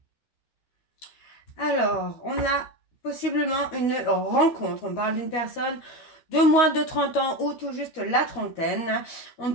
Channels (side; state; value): right; late; 13 ms